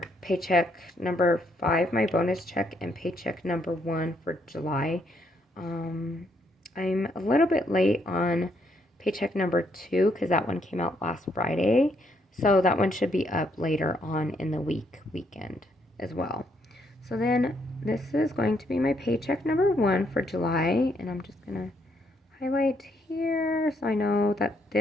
paycheck number 5, my bonus check, and paycheck number 1 for July. I'm a little bit late on paycheck number 2 because that one came out last Friday. So that one should be up later on in the weekend as well. So then this is going to be my paycheck number 1 for July. And I'm just going to highlight here so I know that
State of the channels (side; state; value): both; normal; correlation 0.73